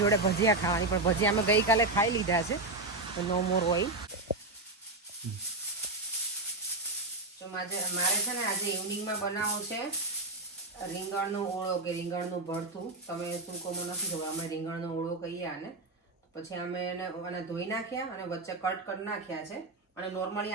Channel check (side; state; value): left; quieter; 3.1 dB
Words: જોડે ભજીયા ખાવાની, પણ ભજીયા અમે ગઈકાલે ખાઈ લીધા છે, તો નો મોર ઓઇલ. તો મારે છે ને આજે ઇવનિંગમાં બનાવવું છે રીંગણનો ઓળો કે રીંગણનું ભરથું. તમે શું કહો મને નથી ખબર, અમે રીંગણનો ઓળો કહીએ આને. પછી અમે એને ધોઈ નાખ્યા અને વચ્ચે કટ કરી નાખ્યા છે. અને નોર્મલી